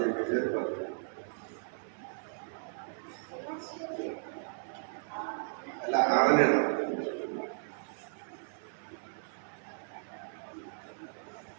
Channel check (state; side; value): silent; left; 54 dB below the other